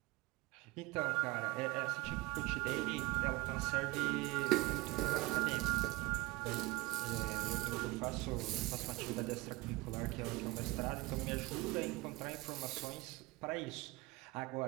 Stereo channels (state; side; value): quieter; left; 22.3 dB